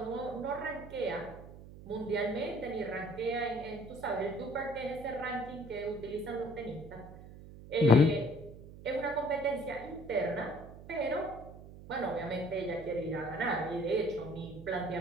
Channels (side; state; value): right; noise; hum, 16 dB below the sound